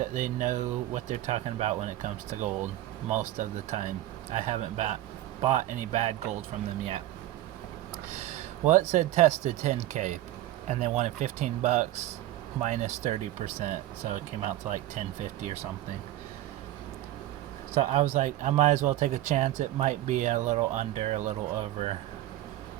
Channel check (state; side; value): quieter; left; 14.6 dB